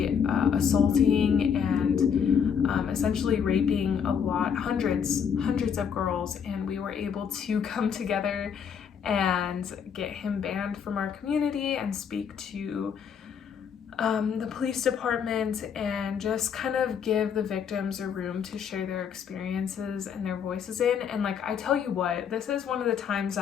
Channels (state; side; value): quieter; right; 7.3 dB